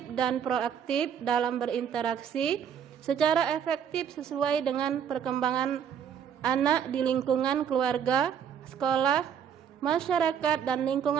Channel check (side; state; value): left; quieter; 8.2 dB